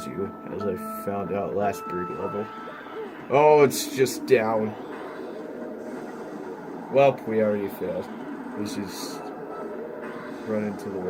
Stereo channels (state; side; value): identical; both; correlation 1.00